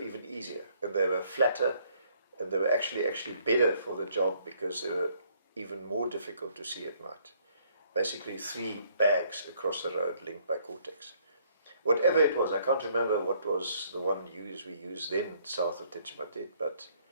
easier, and they were flatter, and they were actually better for the job because they were even more difficult to see at night. Basically 3 bags across the road linked by Cortex. Whatever it was, I can't remember what was the one we used then south of Techimatet, but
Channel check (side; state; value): both; inverted; correlation -0.65